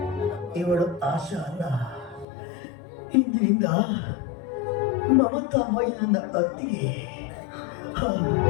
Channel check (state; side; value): drops out; right; at 2.2 s